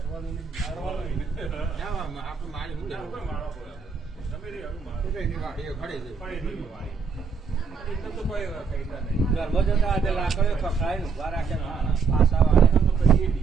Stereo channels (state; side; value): quieter; left; 5.4 dB